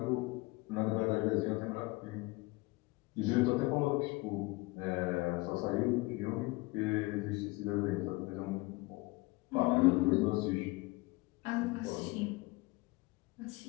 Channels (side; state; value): right; quieter; 23.5 dB